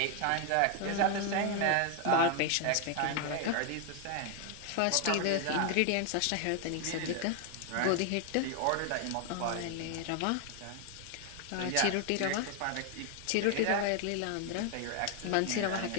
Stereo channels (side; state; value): both; different; correlation 0.01